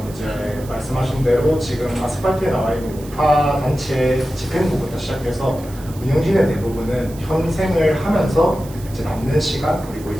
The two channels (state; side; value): noise; right; hiss, 20 dB below the sound